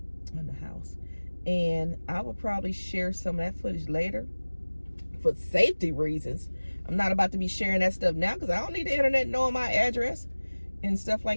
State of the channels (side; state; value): both; inverted; correlation -1.00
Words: the house. And I will probably share some of that footage later for safety reasons. I'm not about to be sharing that stuff now, because I don't need the internet knowing my address and stuff